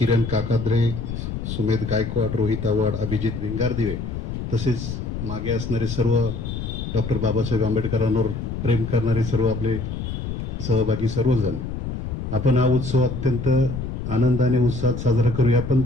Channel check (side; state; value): left; noise; rumble, 5 dB below the sound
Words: काकाद्रे, सुमेध गायकवाड, रोहित आव्हाड, अभिजित भिंगारदिवे तसेच मागे असणारे सर्व डॉक्टर बाबासाहेब आंबेडकरांवर प्रेम करणारे सर्व आपले सहभागी सर्वजण. आपण हा उत्सव अत्यंत आनंदाने उत्साहात साजरा करूया, पण